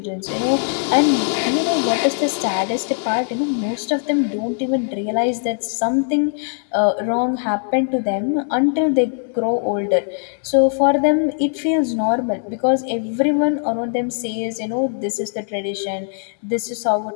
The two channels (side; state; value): right; silent; 66 dB below the other